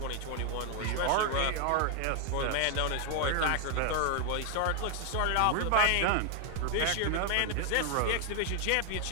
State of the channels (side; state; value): both; different; correlation 0.00